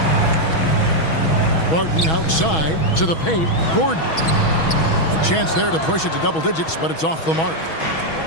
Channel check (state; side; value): late; right; 6.2 ms